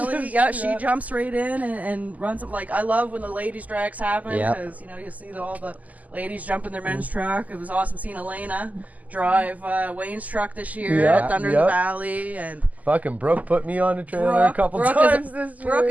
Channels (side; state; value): left; late; 0.077 ms